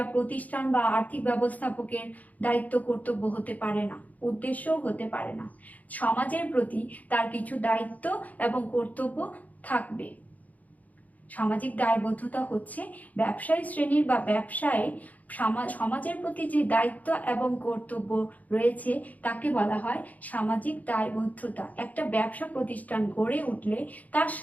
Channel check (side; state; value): right; late; 0.076 ms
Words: প্রতিষ্ঠান বা আর্থিক ব্যবস্থাপকের দায়িত্ব কর্তব্য হতে পারে না, উদ্দেশ্যও হতে পারে না। সমাজের প্রতি তার কিছু দায়িত্ব এবং কর্তব্য থাকবে। সামাজিক দায়বদ্ধতা হচ্ছে ব্যবসায়ী শ্রেণীর বা ব্যবসায় সমাজের প্রতি যে দায়িত্ব এবং কর্তব্য রয়েছে তাকে বলা হয় সামাজিক দায়বদ্ধতা। একটা ব্যবসা প্রতিষ্ঠান গড়ে উঠলে তার